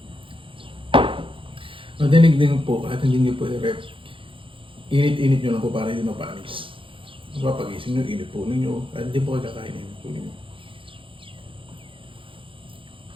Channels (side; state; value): left; late; 0.25 ms